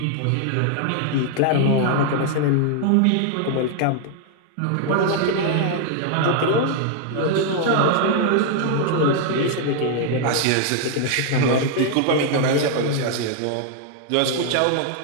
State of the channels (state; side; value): different; both; correlation 0.00